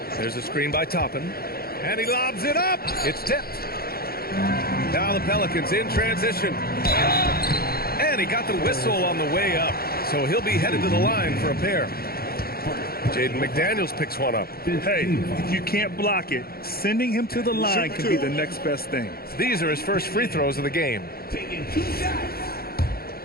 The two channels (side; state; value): right; late; 0.44 ms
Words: There's a screen by Toppin. And he lobs it up. It's tipped. Now the Pelicans in transition. And he got the whistle on the way up. So he'll be headed to the line for a pair. Jaden McDaniels picks one up. Hey, if you can't block it, sending him to the line can be the next best thing. These are his first free throws of the game.